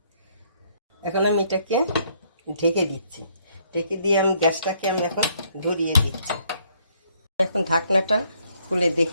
এখন আমি এটাকে ঢেকে দিচ্ছি। ঢেকে দিয়ে আমি গ্যাসটাকে এখন ধরিয়ে দিচ্ছি। এখন ঢাকনাটা খুলে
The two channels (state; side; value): inverted; both; correlation -0.68